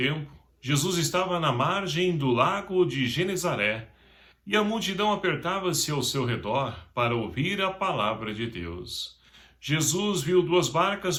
Jesus estava na margem do lago de Genezaré, e a multidão apertava-se ao seu redor para ouvir a palavra de Deus. Jesus viu duas barcas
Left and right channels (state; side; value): identical; both; correlation 1.00